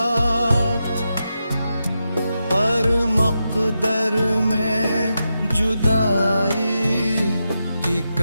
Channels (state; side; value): inverted; both; correlation -0.88